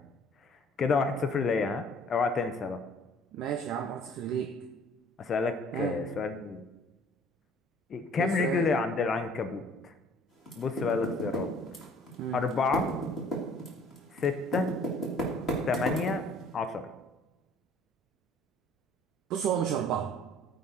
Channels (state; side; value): normal; both; correlation 0.54